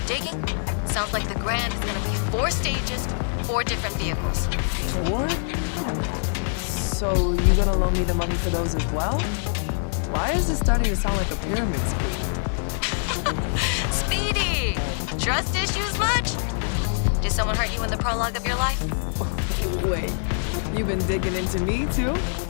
digging. Sounds like the grand is gonna be 4 stages, 4 different vehicles. 4? So you gonna loan me the money for those as well? Why is this starting to sound like a pyramid scheme? Speedy! Trust issues much? Did someone hurt you in the prologue of your life? Wait, you've been digging into me too?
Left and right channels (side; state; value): right; silent; digital silence